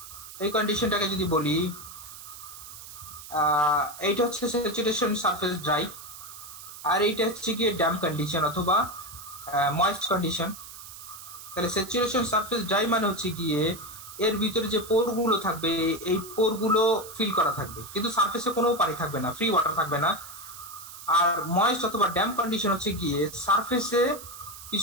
এই কন্ডিশনটাকে যদি বলি, এইটা হচ্ছে স্যাচুরেশন সারফেস ড্রাই, আর এইটা হচ্ছে কি ড্যাম কন্ডিশন অথবা ময়েস্ট কন্ডিশন। তাহলে স্যাচুরেশন সারফেস ড্রাই মানে হচ্ছে গিয়ে এর ভিতরে যে পোরগুলো থাকবে, এই পোরগুলো ফিল করা থাকবে, কিন্তু সারফেসে কোনো পানি থাকবে না, ফ্রি ওয়াটার থাকবে না। আর ময়েস্ট অথবা ড্যাম কন্ডিশন হচ্ছে গিয়ে সারফেসে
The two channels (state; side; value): noise; right; hiss, 14 dB below the sound